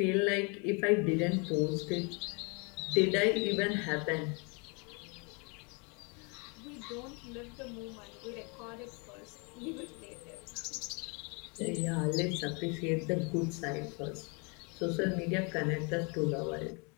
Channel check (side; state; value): right; quieter; 32.8 dB